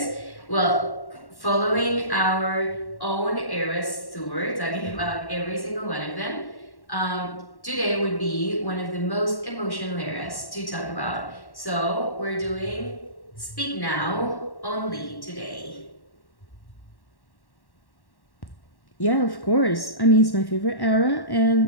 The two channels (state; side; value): late; right; 1.1 ms